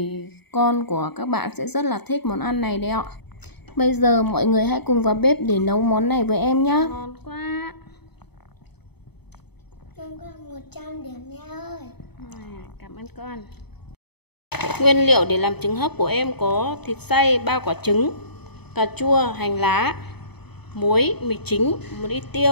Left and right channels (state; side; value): late; right; 0.98 ms